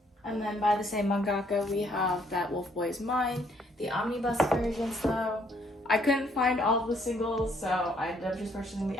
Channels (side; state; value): both; normal; correlation 0.67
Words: And then by the same mangaka, we have That Wolf Boy's Mine. The omnibus versions though, I couldn't find all of the singles, so I ended up just purchasing the